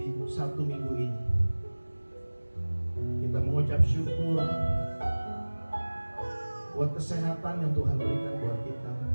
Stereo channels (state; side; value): inverted; both; correlation -1.00